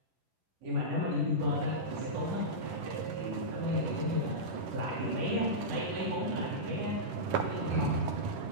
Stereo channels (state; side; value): late; left; 10 ms